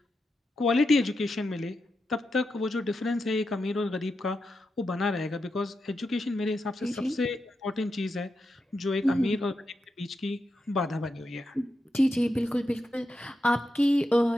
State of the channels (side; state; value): both; normal; correlation 0.87